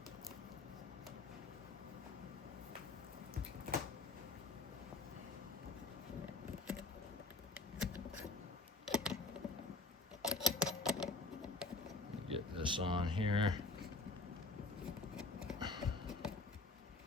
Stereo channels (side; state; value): right; quieter; 3.3 dB